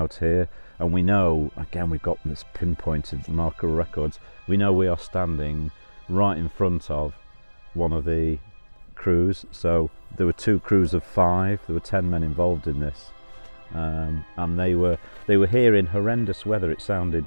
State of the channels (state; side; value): inverted; both; correlation -1.00